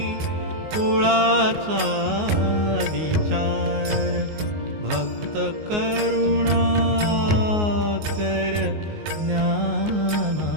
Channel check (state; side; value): late; left; 19 ms